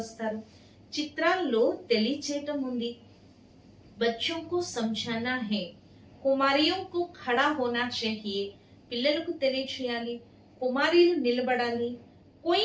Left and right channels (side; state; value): both; identical; correlation 1.00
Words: చిత్రాల్లో తెలియచేయటం ఉంది. బచ్చోं को समझाना है. కుమారియో को खड़ा होना चाहिए. పిల్లలకు తెలియచేయాలి, కుమారీలు నిలబడాలి. कोई